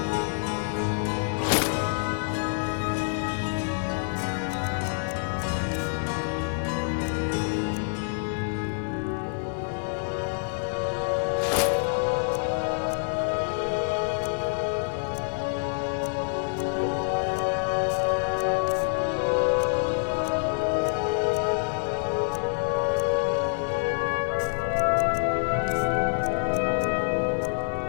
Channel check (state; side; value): silent; right; digital silence